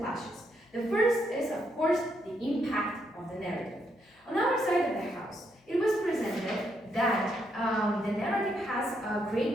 The first is, of course, the impact of the narrative. On our side of the house, it was presented that the narrative has a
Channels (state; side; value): normal; both; correlation 0.77